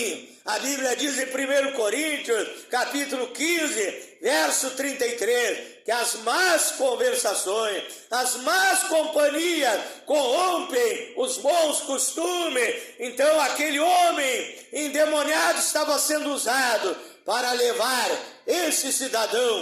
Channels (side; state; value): both; identical; correlation 1.00